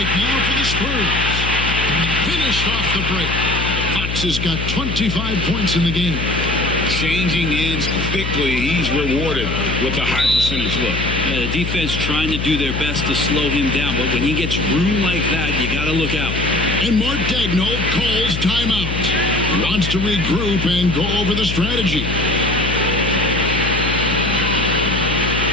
now for the Spurs. Finished off the break. Fox has got 25 points in the game. Changing ends quickly. He's rewarded with a high percentage look. Yeah, the defense trying to do their best to slow him down, but when he gets room like that, you got to look out. And Mark Daigneault calls timeout. He wants to regroup and go over the strategy.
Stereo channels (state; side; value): noise; left; hum, 4 dB below the sound